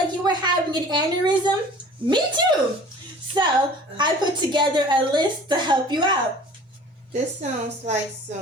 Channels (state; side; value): normal; both; correlation 0.46